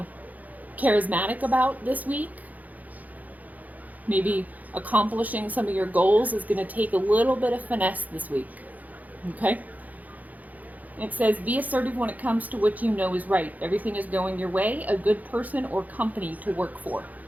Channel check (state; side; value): late; left; 0.079 ms